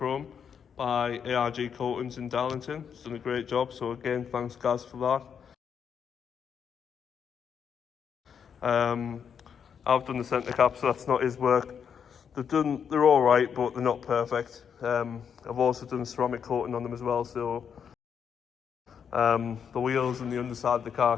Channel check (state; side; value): quieter; right; 7.4 dB